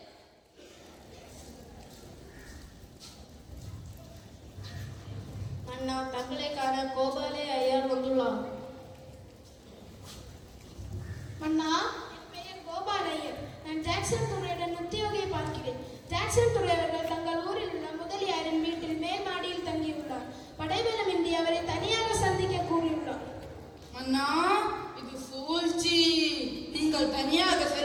அண்ணா, தங்களை காண கோபாலே ஐயர் வந்துள்ளார். அண்ணா, என் பெயர் கோபால் ஐயர். நான் ஜாக்சன் துறையுடன் உத்தியோகியை பார்க்கிறேன். ஜாக்சன் துறை அவர்கள் தங்கள் ஊரில் உள்ள முதலியாரின் வீட்டில் மேல் மாடியில் தங்கியுள்ளார். படைபலமின்றி அவரை தனியாக சந்திக்க கூறியுள்ளார். அண்ணா, இது சூழ்ச்சி. நீங்கள் தனியாக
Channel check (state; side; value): identical; both; correlation 1.00